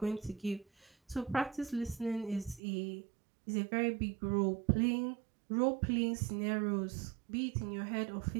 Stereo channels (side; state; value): left; drops out; at 2.6 s